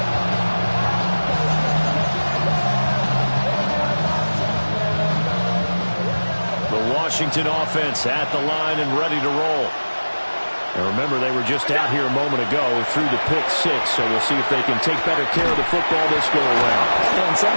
Washington offense at the line and ready to roll. And remember, they were just out here a moment ago through the pick-6, so we'll see if they can take better care of the football this go-around. And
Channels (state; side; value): inverted; both; correlation -1.00